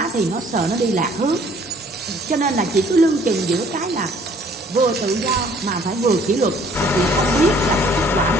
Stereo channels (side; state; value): both; normal; correlation 0.58